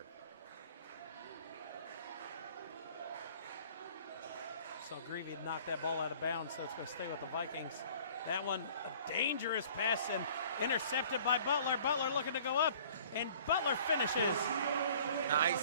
So Greavy had knocked that ball out of bounds, so it's going to stay with the Vikings. That one, a dangerous pass and intercepted by Butler. Butler looking to go up, and Butler finishes.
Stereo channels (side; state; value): both; inverted; correlation -0.51